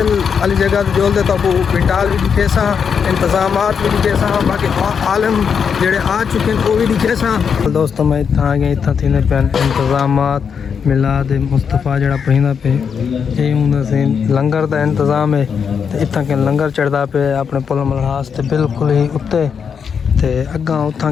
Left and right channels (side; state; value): right; quieter; 6.7 dB